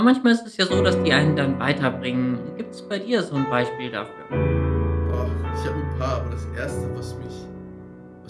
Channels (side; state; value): both; identical; correlation 1.00